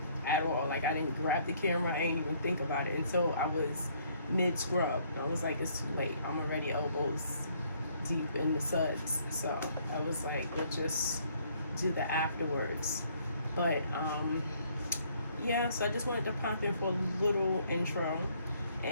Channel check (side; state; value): both; inverted; correlation -0.65